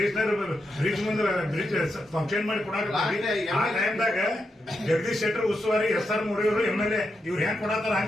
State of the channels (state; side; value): normal; both; correlation 0.85